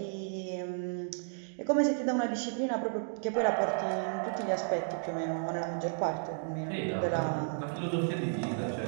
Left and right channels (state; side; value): silent; left; digital silence